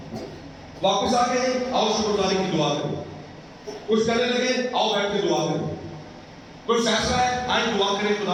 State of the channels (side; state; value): both; identical; correlation 1.00